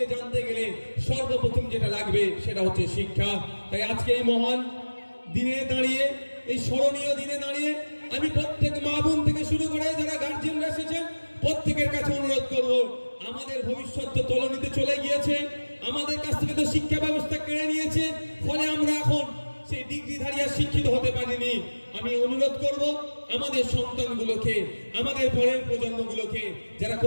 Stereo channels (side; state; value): both; inverted; correlation -1.00